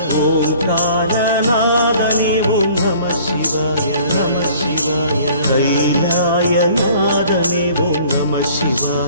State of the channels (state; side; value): inverted; both; correlation -0.52